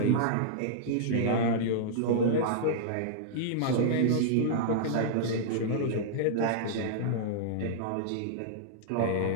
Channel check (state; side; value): different; both; correlation -0.02